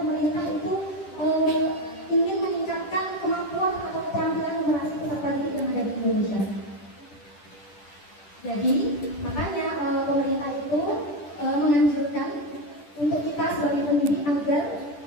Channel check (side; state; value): right; late; 10 ms